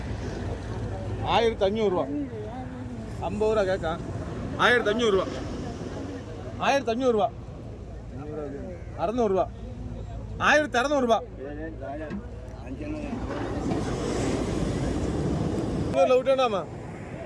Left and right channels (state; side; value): identical; both; correlation 1.00